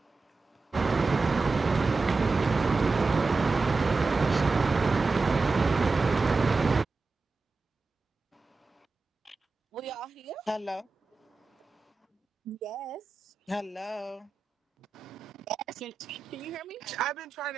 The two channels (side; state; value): left; quieter; 3.9 dB